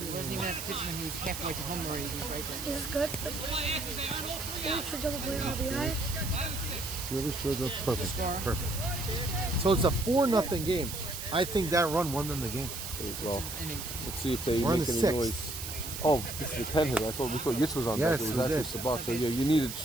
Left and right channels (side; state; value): right; noise; hiss, 7 dB below the sound